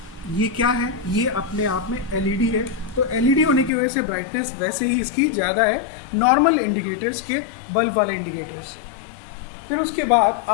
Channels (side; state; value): right; drops out; at 3.7 s